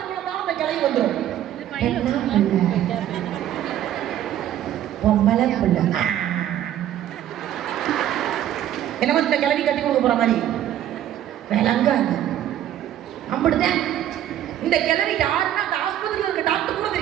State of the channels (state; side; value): quieter; left; 11.7 dB